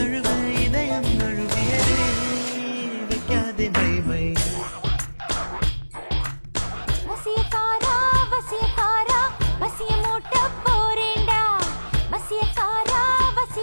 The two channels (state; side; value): inverted; both; correlation -1.00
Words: இதயம் நழுவியதே வைக்காதே மை வசியக்காரா வசியக்காரா வசிய மூட்ட போறேண்டா வசியக்காரா